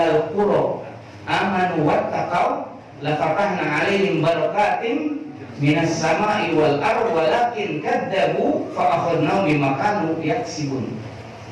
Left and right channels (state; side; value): identical; both; correlation 1.00